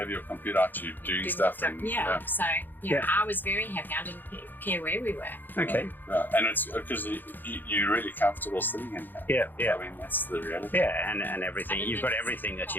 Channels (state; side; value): late; right; 0.089 ms